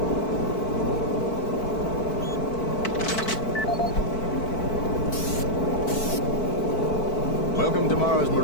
Welcome to Mars,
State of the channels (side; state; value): right; late; 4.5 ms